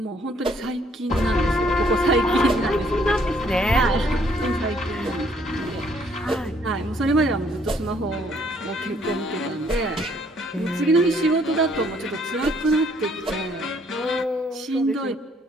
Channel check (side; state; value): both; normal; correlation 0.65